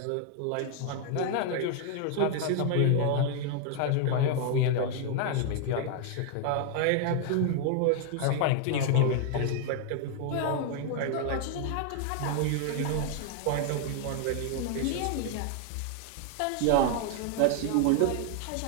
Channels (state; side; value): different; both; correlation 0.00